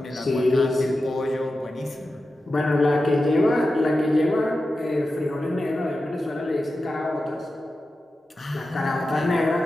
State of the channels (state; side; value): normal; both; correlation 0.92